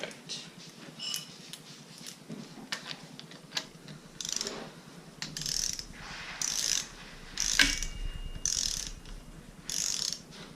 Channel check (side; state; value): both; identical; correlation 1.00